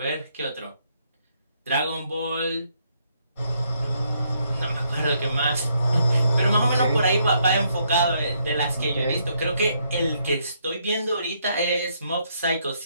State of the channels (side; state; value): both; inverted; correlation -0.73